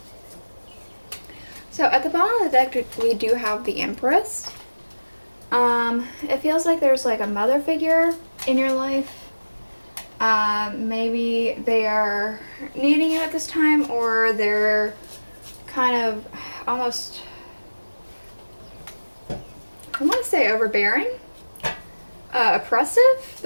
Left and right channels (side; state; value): both; inverted; correlation -1.00